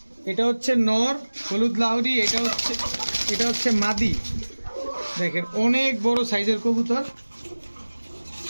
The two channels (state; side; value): inverted; both; correlation -1.00